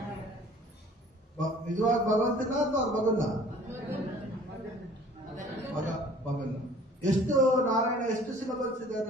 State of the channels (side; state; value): both; normal; correlation 0.51